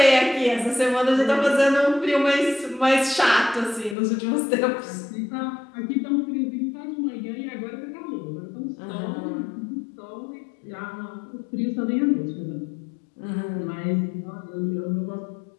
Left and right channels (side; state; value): right; drops out; at 4.0 s